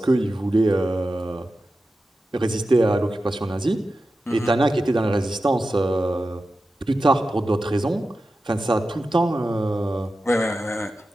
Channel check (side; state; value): both; normal; correlation 0.93